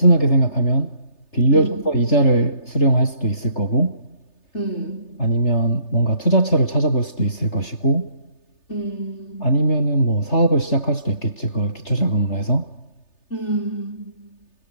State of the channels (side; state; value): right; late; 3.3 ms